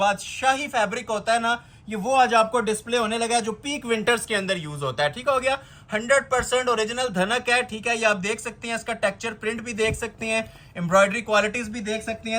फैब्रिक होता है ना, ये वो आज आपको डिस्प्ले होने लगा है, जो पीक विंटर्स के अंदर यूज होता है, ठीक हो गया। 100% ओरिजिनल धनक है, ठीक है। ये आप देख सकते हैं, इसका टेक्सचर प्रिंट भी देख सकते हैं, एम्ब्रॉयडरी क्वालिटीज भी देख सकते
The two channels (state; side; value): identical; both; correlation 1.00